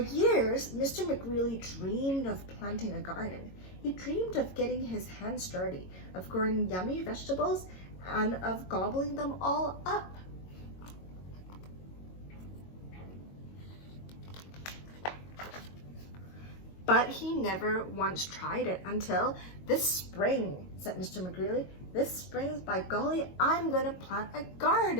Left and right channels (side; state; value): right; late; 22 ms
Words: Mr. McGreely dreamed of planting a garden. He dreamed of getting his hands dirty, of growing yummy vegetables, and of gobbling them all up. But he never once tried it until this spring, said Mr. McGreely. This spring, by golly, I'm going to plant a